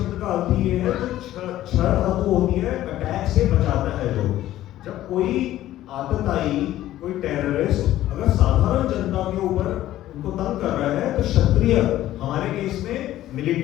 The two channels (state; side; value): quieter; right; 13.9 dB